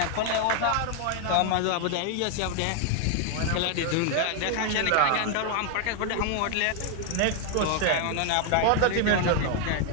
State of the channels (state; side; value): different; both; correlation 0.00